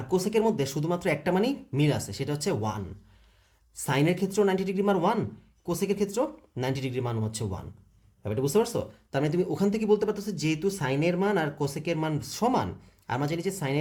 কোসেকের মধ্যে শুধুমাত্র একটা মানই মিল আছে, সেটা হচ্ছে 1। সাইনের ক্ষেত্রেও 90 ডিগ্রি মান 1, কোসেকের ক্ষেত্রেও 90 ডিগ্রি মান হচ্ছে 1। ব্যাপারটা বুঝতে পারছো? তার মানে তুমি ওখান থেকে বলতে পারতেছো যেহেতু সাইনের মান আর কোসেকের মান সমান, আর আমরা জানি যে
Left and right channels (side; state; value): both; identical; correlation 1.00